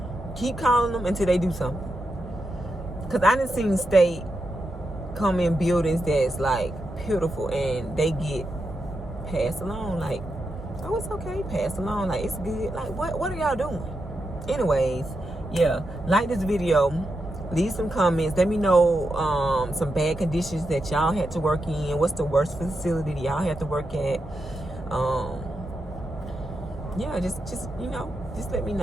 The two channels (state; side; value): normal; both; correlation 0.86